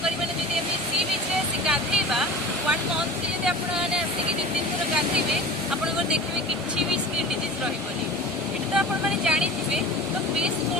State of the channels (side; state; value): both; normal; correlation 0.35